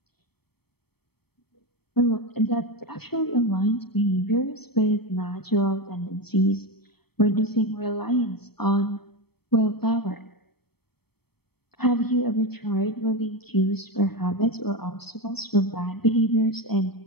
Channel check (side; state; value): right; late; 0.97 ms